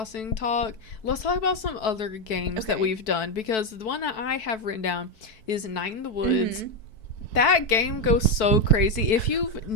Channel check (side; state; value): right; late; 4.6 ms